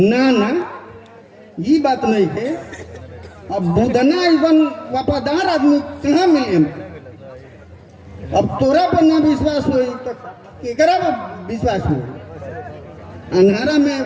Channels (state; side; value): identical; both; correlation 1.00